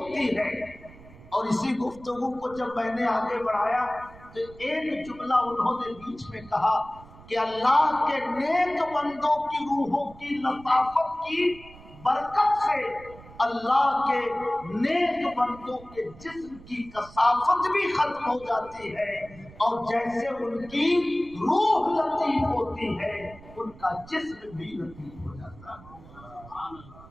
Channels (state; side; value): noise; right; rumble, 20 dB below the sound